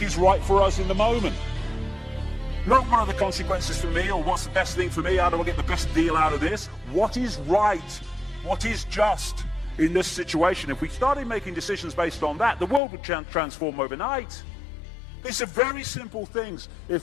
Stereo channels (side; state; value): right; drops out; at 12.8 s